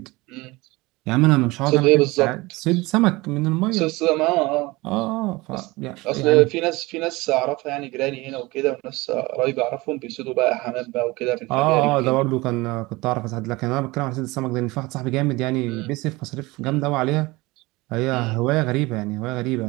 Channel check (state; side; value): quieter; left; 22.1 dB